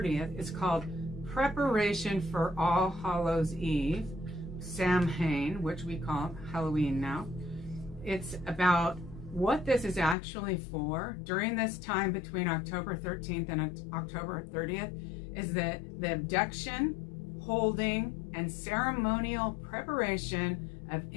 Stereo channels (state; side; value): drops out; right; at 10.2 s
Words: is called Preparation for All Hallows Eve, Samhain, which we call Halloween now. It's about what this is actually for. During this time between October 13th and October 30th is the abduction, holding, and ceremonial preparation of